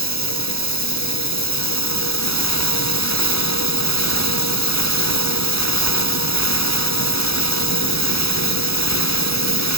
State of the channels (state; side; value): late; right; 0.77 ms